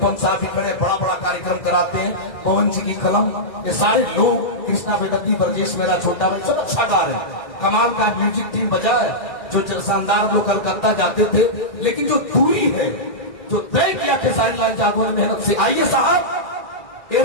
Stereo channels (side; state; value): right; late; 2.0 ms